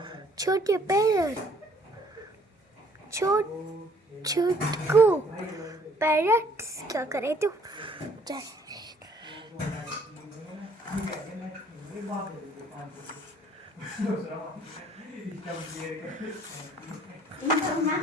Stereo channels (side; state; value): both; normal; correlation 0.60